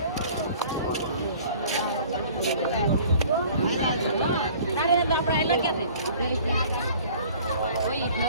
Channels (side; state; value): both; inverted; correlation -0.49